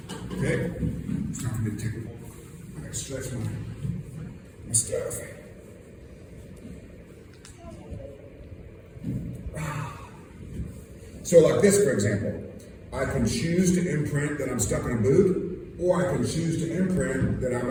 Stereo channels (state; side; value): identical; both; correlation 1.00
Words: Okay? It's time for me to take it. I got to stretch my my stuff. So like this, for example, I can choose to imprint that I'm stuck in a boot, or I can choose to imprint that I'm